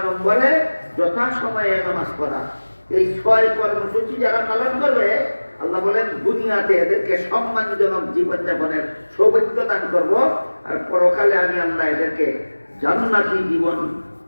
নম্বরে যথাসময়ে নামাজ পড়া। এই 6 কর্মসূচি যারা পালন করবে আল্লাহ বলেন দুনিয়াতে এদেরকে সম্মানজনক জীবনযাপনের সৌভাগ্য দান করব, আর পরকালে আমি আল্লাহ এদেরকে জান্নাতি জীবন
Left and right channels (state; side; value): inverted; both; correlation -1.00